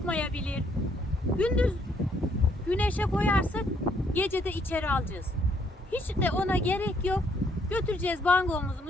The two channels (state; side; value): normal; both; correlation 0.69